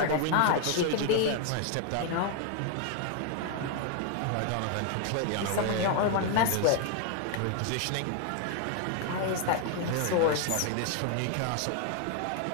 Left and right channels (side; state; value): both; different; correlation 0.00